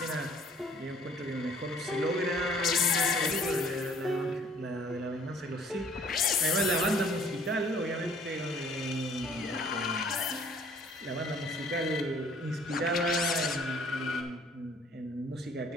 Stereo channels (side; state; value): both; normal; correlation 0.56